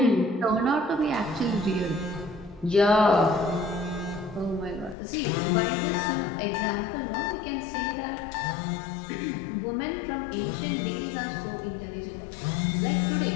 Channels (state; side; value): drops out; right; at 5.0 s